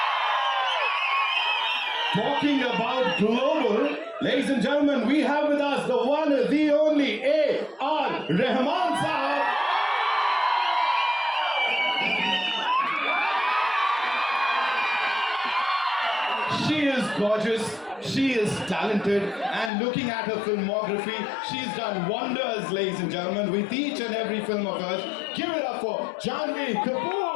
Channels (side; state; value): right; drops out; at 19.7 s